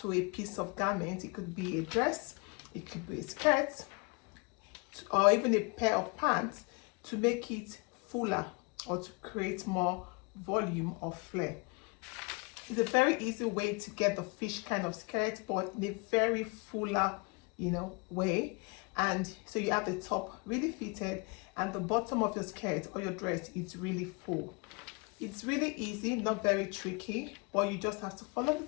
a piece of garment. It could be a dress, it could be a skirt, or even a pair of pants to make it fuller or to create more volume or flare. It's a very easy way to get the fish kind of skirt, but in a very fuller, way. And so you have the top really fitted and the bottom of your skirt or your dress is really full. It's really easy, not very tricky, but you just have to follow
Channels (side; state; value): right; quieter; 30.7 dB